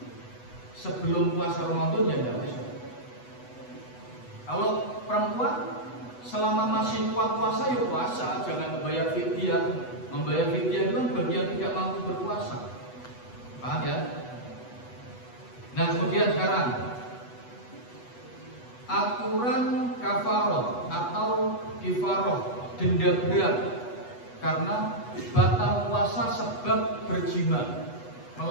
sebelum puasa Ramadan ya tidak usah. Kalau perempuan selama masih kuat puasa ya puasa, jangan membayar fidyah. Membayar fidyah itu kan bagi yang tidak mampu berpuasa. Paham ya? Nah kemudian sekarang aturan kafaroh atau kifaroh, denda berat karena batal puasa sebab berjima,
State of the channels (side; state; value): right; late; 8.1 ms